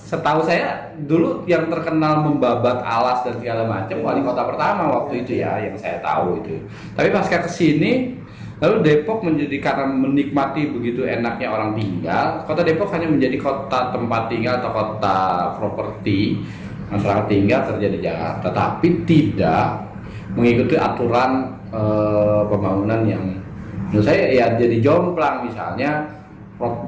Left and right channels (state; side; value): identical; both; correlation 1.00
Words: saya dulu yang terkenal membabat alas dan segala macam wali kota pertama waktu itu ya, yang saya tahu itu. Tapi pasca kesini, lalu Depok menjadi karena menikmati begitu enaknya orang tinggal, Kota Depok hanya menjadi kota tempat tinggal atau kota properti masyarakat tinggal kerja di Jakarta, tapi tidak mengikuti aturan pembangunan yang menurut saya ya jadi jomplang. Misalnya